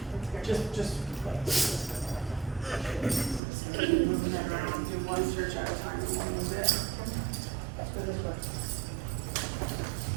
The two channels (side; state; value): left; drops out; at 3.4 s